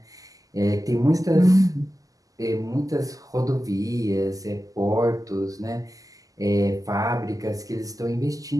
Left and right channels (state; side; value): late; left; 0.17 ms